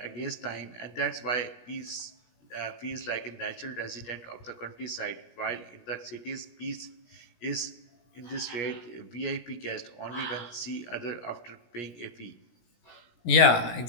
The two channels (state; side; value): late; right; 17 ms